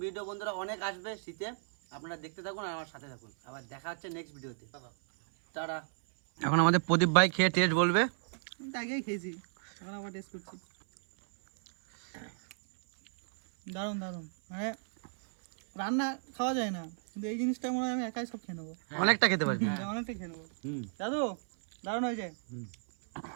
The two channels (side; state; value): left; silent; 56 dB below the other